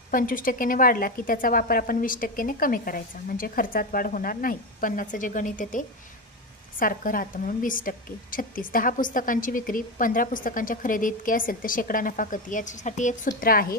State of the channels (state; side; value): normal; both; correlation 0.15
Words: 25%ने वाढला की त्याचा वापर आपण 20%ने कमी करायचा, म्हणजे खर्चात वाढ होणार नाही। 50चं जे गणित आहे ते सारखं राहतं म्हणून 20%। 36, 10 पुस्तकांची विक्री 15 पुस्तकांच्या खरेदी इतकी असेल तर शेकडा नफा किती। याच्यासाठी एक सूत्र आहे,